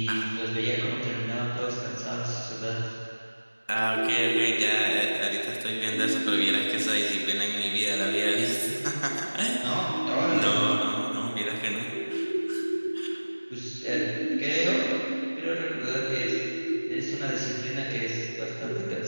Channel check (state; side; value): inverted; both; correlation -1.00